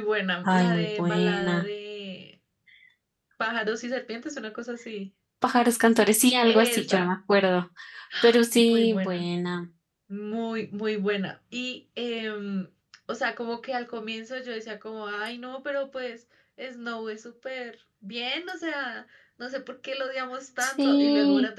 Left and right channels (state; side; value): identical; both; correlation 1.00